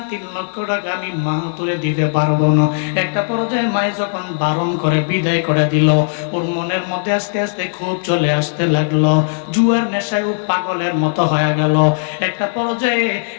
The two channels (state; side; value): silent; right; digital silence